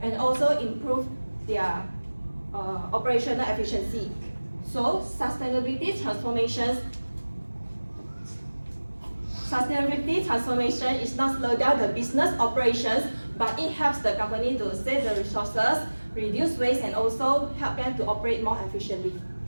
and also improve their operational efficiency. So sustainability transformation is not slow down the business operations, but it helps the company to save the resources, reduce waste, and also help them to operate more efficiently.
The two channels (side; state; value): both; inverted; correlation -1.00